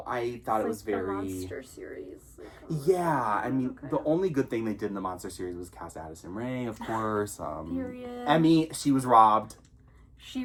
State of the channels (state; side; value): identical; both; correlation 1.00